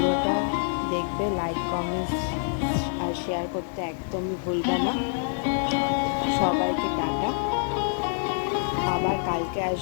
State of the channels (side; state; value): right; silent; digital silence